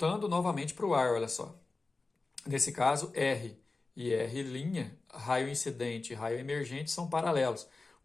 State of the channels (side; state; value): right; quieter; 3.6 dB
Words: novamente para o ar, olha só. Nesse caso, R e R', raio incidente e raio emergente, são paralelos.